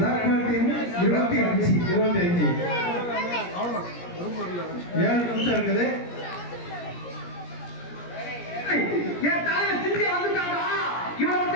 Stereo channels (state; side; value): late; right; 17 ms